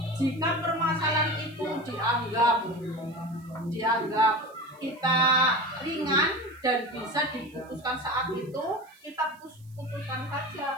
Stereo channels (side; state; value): right; noise; hiss, 30 dB below the sound